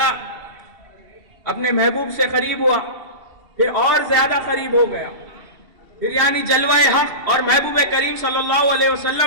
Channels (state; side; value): late; left; 2.7 ms